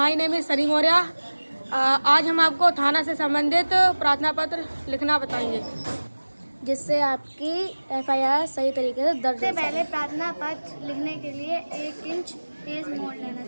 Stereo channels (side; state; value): both; inverted; correlation -1.00